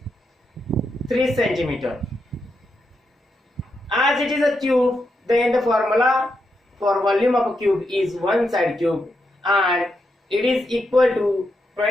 3 centimeter. As it is a cube, then the formula for volume of a cube is one side cube and it is equal to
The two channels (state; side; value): normal; both; correlation 0.83